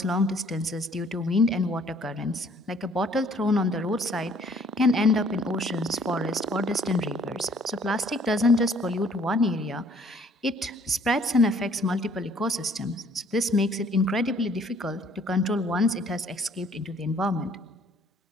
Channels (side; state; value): both; normal; correlation 0.59